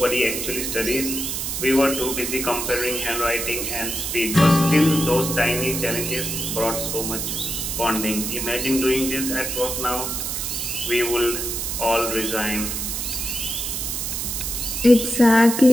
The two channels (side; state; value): right; noise; hiss, 3 dB below the sound